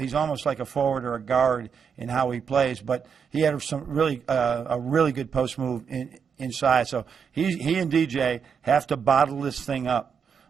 almost like a forward or a guard in how he plays. But he had some a really good post move inside. So he and DJ have to bottle this thing up,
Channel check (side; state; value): left; quieter; 6.7 dB